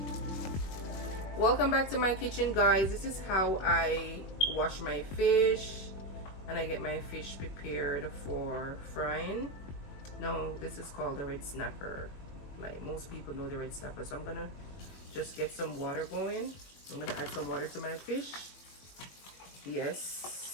Welcome back to my kitchen, guys. This is how I wash my fish and I get my fish prepared for frying. Now this is called the red snapper. Like most people know the red snapper. So I'm gonna just get some water going. I'm gonna add some water to my fish.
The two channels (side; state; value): right; late; 21 ms